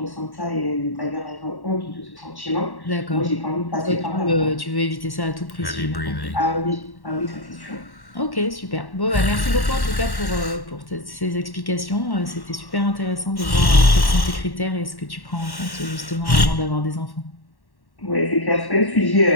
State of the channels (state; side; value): late; right; 1.1 ms